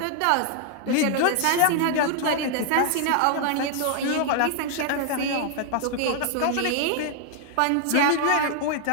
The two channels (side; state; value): both; different; correlation 0.00